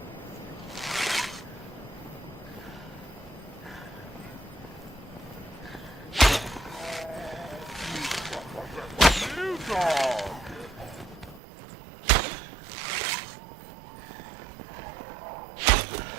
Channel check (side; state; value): left; drops out; at 11.4 s